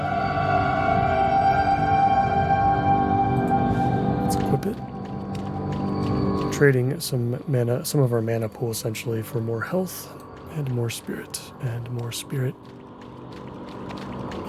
Let's equip it. Trading some of our mana pool essentially for more health and more spirit. And more spirit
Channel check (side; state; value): both; identical; correlation 1.00